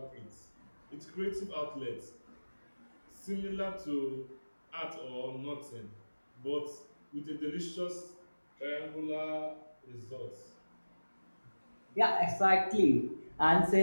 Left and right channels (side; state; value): both; inverted; correlation -1.00